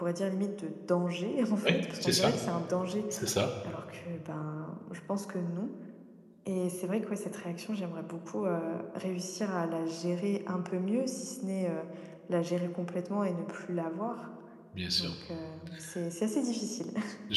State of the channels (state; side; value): identical; both; correlation 1.00